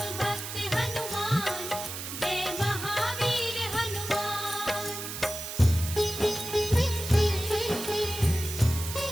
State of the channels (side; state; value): right; noise; hiss, 7 dB below the sound